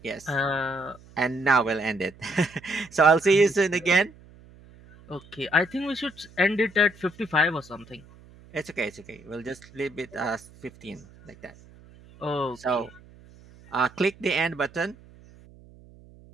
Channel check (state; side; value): noise; right; hum, 24 dB below the sound